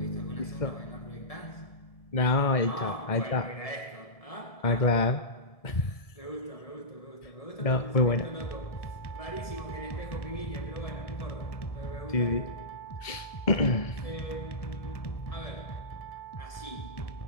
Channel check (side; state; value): right; late; 1.7 ms